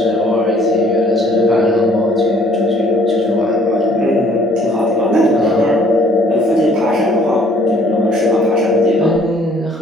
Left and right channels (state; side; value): normal; both; correlation 0.59